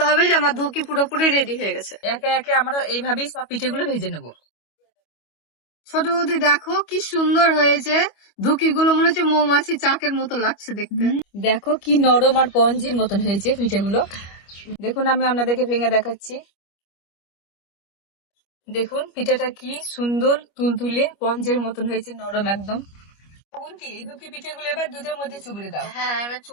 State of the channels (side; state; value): right; late; 25 ms